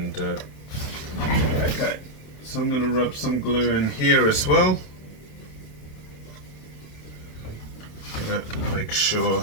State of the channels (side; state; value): right; late; 27 ms